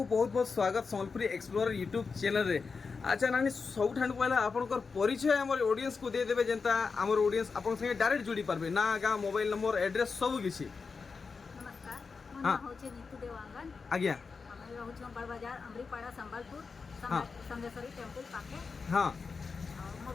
बहुत बहुत स्वागत सम्बलपुरी एक्सप्लोरर यूट्यूब चैनल रे अच्छा नानी सब ठान पहला आपनकर परिचय हमर ऑडियंस को दे देबे जेंता हमर ऑडियंस आपन संगे डायरेक्ट जुड़ी पारबे ना गा मोबाइल नंबर एड्रेस सब किछि नमस्कार मोर नाम होचे नीतू देवांगन आज्ञा हमें रहउछ बड़ बाजार अमरीपाड़ा संबलपुर हाँ। संगेश्वरी टेंपल पाके हां और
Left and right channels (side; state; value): right; quieter; 4.9 dB